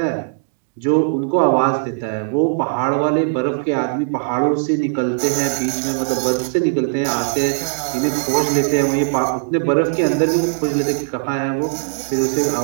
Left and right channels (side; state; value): left; silent; digital silence